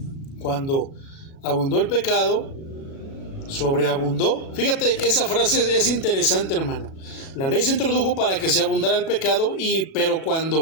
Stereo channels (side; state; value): right; late; 37 ms